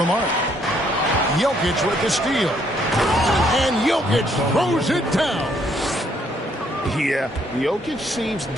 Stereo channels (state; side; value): normal; both; correlation 0.69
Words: mark. Jokic with the steal. And Jokic throws it down. Yeah, Jokic seems